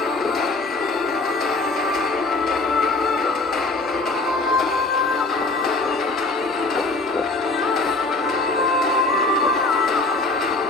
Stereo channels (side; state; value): right; quieter; 3.1 dB